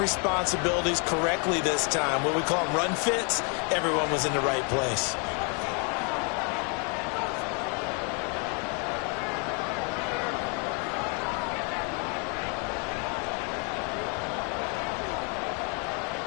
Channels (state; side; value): quieter; right; 36.7 dB